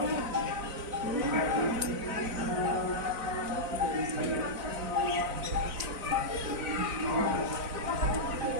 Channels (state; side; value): late; left; 4.0 ms